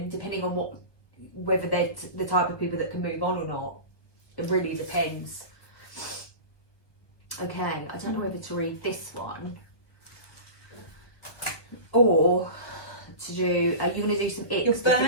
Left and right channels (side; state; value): right; late; 1.3 ms